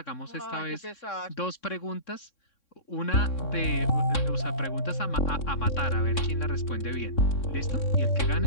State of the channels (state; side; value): late; right; 3.6 ms